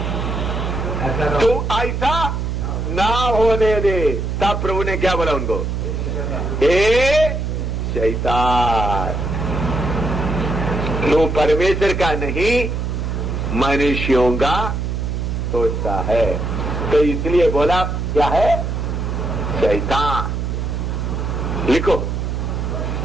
तो ऐसा ना होने दे। तब प्रभु ने क्या बोला उनको, ए शैतान, तू परमेश्वर का नहीं मनुष्यों का सोचता है। तो इसलिए बोला क्या है, शैतान। लिखो,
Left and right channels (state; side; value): noise; right; hum, 2 dB below the sound